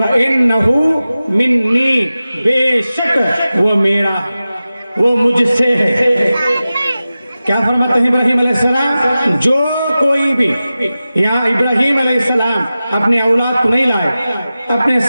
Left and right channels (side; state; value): both; inverted; correlation -0.95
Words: مِنِّي بے شک وہ میرا وہ مجھ سے ہے کیا فرماتے ہیں ابراہیم علیہ السلام جو کوئی بھی یہاں ابراہیم علیہ السلام اپنے اولاد کو نہیں لائے اپنے